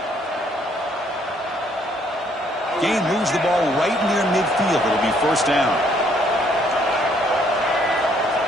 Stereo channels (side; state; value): both; normal; correlation 0.66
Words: Gain moves the ball right near midfield. It'll be first down.